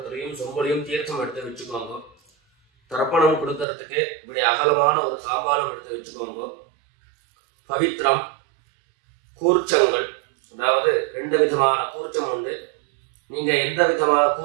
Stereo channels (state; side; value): drops out; left; at 3.7 s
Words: சொம்பலையும் தீர்த்தம் எடுத்து வச்சுக்கோங்க. தர்ப்பணம் கொடுக்கறதுக்கு இப்படி அகலமான ஒரு தாம்பாலம் எடுத்து வச்சுக்கோங்க. பவித்திரம், கூர்ச்சங்கள், அதாவது 2 விதமான கூர்ச்சம் உண்டு. நீங்க எந்த விதமான